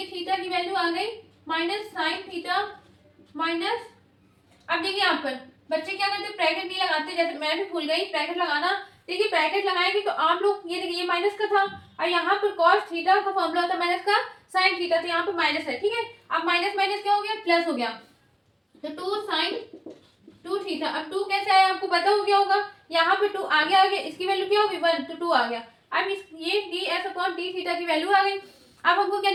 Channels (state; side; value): identical; both; correlation 1.00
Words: theta की वैल्यू आ गई माइनस साइन थीटा माइनस। अब देखिए यहाँ पर बच्चे क्या करते हैं, ब्रैकेट नहीं लगाते, जैसे मैं भी भूल गई ब्रैकेट लगाना। देखिए ब्रैकेट लगाएंगे तो आप लोग ये देखिए ये माइनस का था, और यहाँ पर कॉस थीटा का फॉर्मूला होता है माइनस का साइन थीटा, तो यहाँ पर माइनस है। ठीक है, अब माइनस माइनस क्या हो गया, प्लस हो गया, तो 2 साइन 2 थीटा। अब 2 कैसे आया आपको पता हो गया होगा, यहाँ पे 2 आगे आ गया, इसकी वैल्यू क्या होगी 1, तो 2 आ गया। अब इस ये D S upon D theta की वैल्यू आ गई। अब हमको क्या